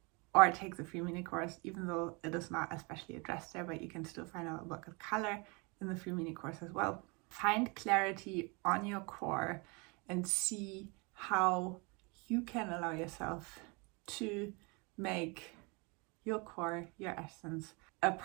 or take the free mini course, even though it is not especially addressed there, but you can still find out about the color in the free mini course as well. Find clarity on your core and see how you can allow yourself to make your core, your essence, a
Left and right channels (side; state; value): left; quieter; 29.8 dB